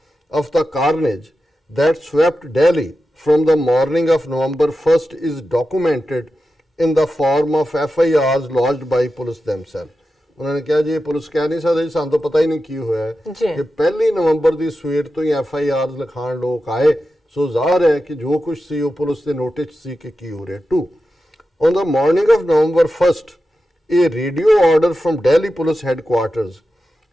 of the carnage that swept Delhi from the morning of November 1st is documented in the form of FIRs lodged by police themselves। उन्होंने कहा जी police कह नहीं सकती सानू तो पता ही नहीं की होया है कि 1 नवंबर की सवेर तो ही FIRs लिखाण लोग आए। सो ज़ाहिर है कि जो कुछ सी वो पुलिस के नोटिस सी कि की हो रहा है। 2 on the morning of November 1st a radio order from Delhi Police Headquarters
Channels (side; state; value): both; normal; correlation 0.91